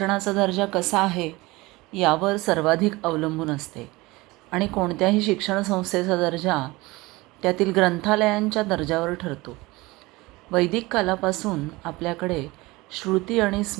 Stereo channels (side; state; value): left; quieter; 21.7 dB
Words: दर्जा कसा आहे यावर सर्वाधिक अवलंबून असते आणि कोणत्याही शिक्षण संस्थेचा दर्जा त्यातील ग्रंथालयांच्या दर्जावर ठरतो. वैदिक कालापासून आपल्याकडे श्रुती आणि